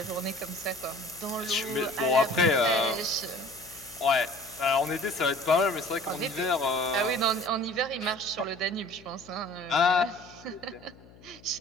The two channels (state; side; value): noise; left; hum, 23 dB below the sound